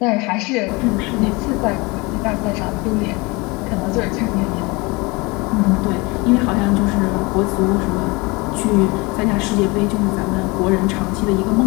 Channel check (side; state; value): right; quieter; 25.7 dB